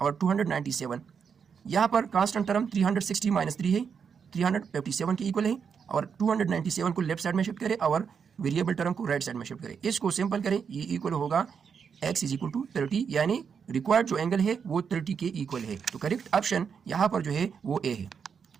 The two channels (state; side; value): quieter; left; 6.6 dB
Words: 297। यहाँ पर कांस्टेंट टर्म 360 माइनस 3 है, 357 के इक्वल है, और 297 को लेफ्ट साइड में शिफ्ट करें और वेरिएबल टर्म को राइट साइड में शिफ्ट करें। इसको सिंपल करें, ये इक्वल होगा x इज इक्वल टू 30, यानी रिक्वायर्ड जो एंगल है वो 30 के इक्वल है। तो करेक्ट ऑप्शन यहाँ पर जो है वो ए है।